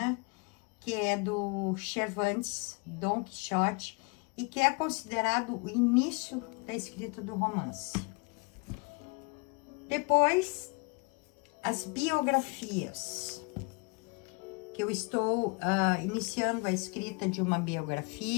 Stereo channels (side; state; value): right; quieter; 30.3 dB